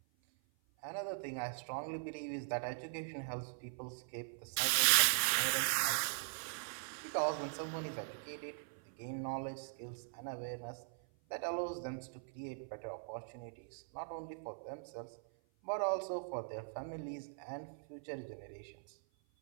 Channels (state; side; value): silent; left; 51 dB below the other